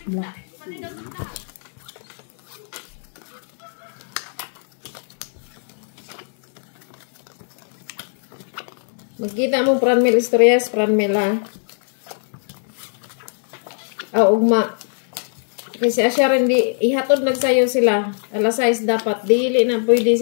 Black. Magkita mo pranmil istoryas, pranmil ha. Ugma. Kasi asya rin di, ihatod nagsayo sila. Alas 6 dapat. Dili na pwede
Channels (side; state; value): right; silent; 60 dB below the other